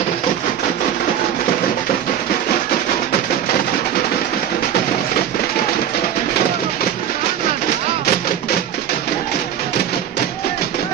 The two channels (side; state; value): left; quieter; 9.8 dB